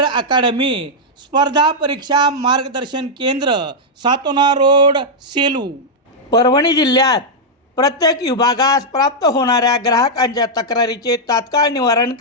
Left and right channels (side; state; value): both; normal; correlation -0.04